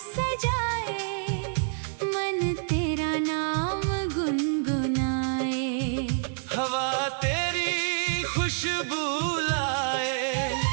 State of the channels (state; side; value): silent; left; 60 dB below the other